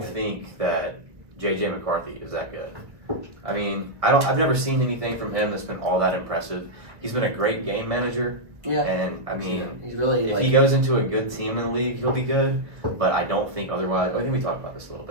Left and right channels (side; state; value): left; late; 1.3 ms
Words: good. think that J.J. McCarthy is that good. I mean, I've never seen anything from him that's been all that impressive. He's been a great game manager, Yeah. and I mean, he's really if like he goes into a good team in the league, he'll be good. But I don't think otherwise. I think we talked about this a little